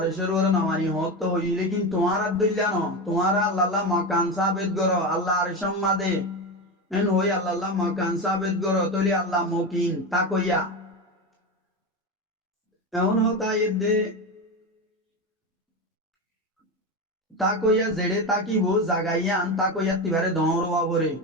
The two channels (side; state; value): both; normal; correlation 0.19